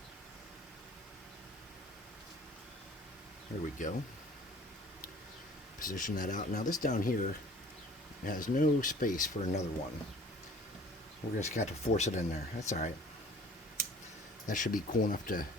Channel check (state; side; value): normal; both; correlation 0.50